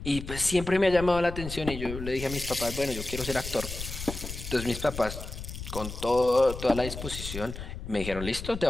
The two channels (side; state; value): left; noise; rumble, 9 dB below the sound